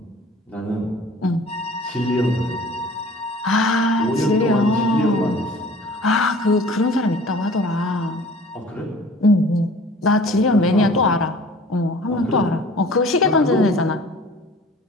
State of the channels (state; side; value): normal; both; correlation 0.47